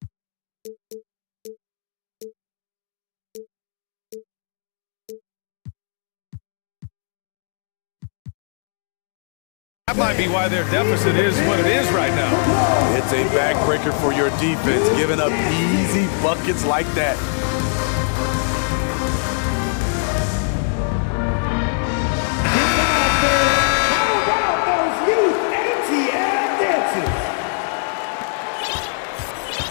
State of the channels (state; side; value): silent; right; 65 dB below the other